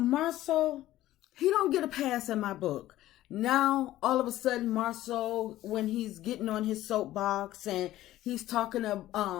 he don't get a pass in my book. Now, all of a sudden, Marsau, when he's getting on his soapbox and he's talking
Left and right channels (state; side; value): quieter; right; 14.7 dB